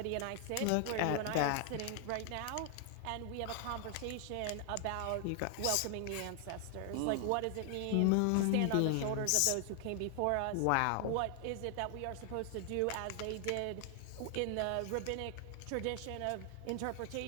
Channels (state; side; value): different; both; correlation 0.00